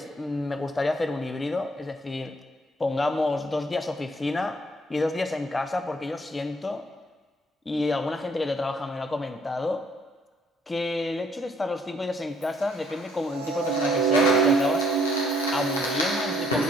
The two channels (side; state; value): both; normal; correlation 0.66